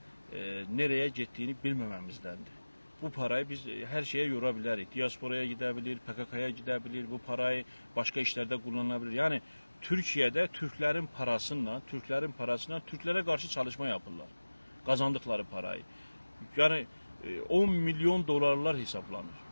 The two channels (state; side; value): inverted; both; correlation -1.00